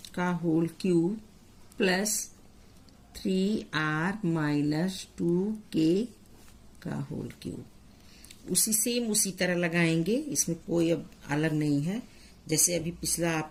का whole cube plus 3r minus 2k का होल क्यूब। उसी तरह लगाएंगे, इसमें कोई अब अलग नहीं है, जैसे अभी पिछला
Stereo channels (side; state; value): both; identical; correlation 1.00